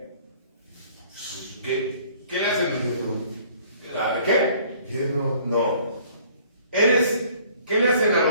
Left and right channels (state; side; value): inverted; both; correlation -0.56